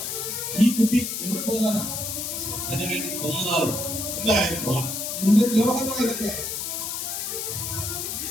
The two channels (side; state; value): left; noise; hiss, 3 dB below the sound